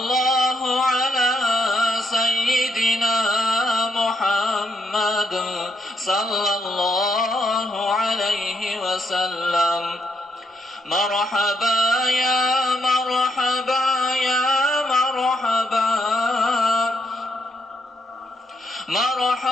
ala seyyidina Muhammad sallallahu aleyhi ve sellem. Merhaba ya merhaba ya merhaba.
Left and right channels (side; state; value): both; normal; correlation 0.77